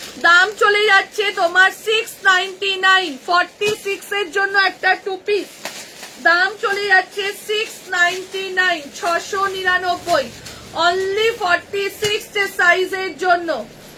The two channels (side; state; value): both; identical; correlation 1.00